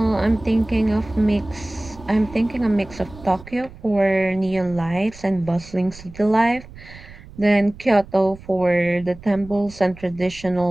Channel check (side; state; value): right; noise; rumble, 18 dB below the sound